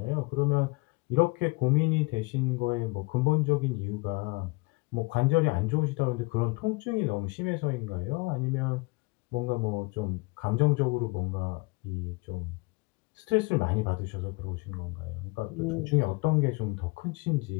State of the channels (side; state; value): right; quieter; 26.2 dB